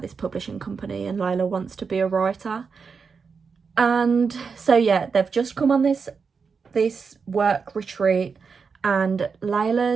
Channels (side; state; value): left; quieter; 5.4 dB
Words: this publishing company and Layla wants to be a writer. And so yeah, they've just come on this work retreat, and